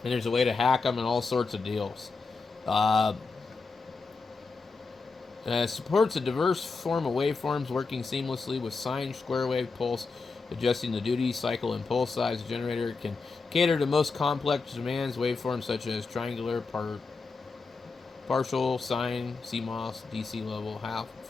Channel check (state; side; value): quieter; right; 4.3 dB